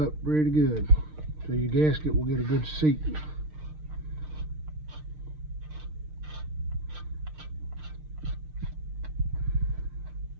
pretty good so your gasket will get a good seat.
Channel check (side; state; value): left; late; 6.5 ms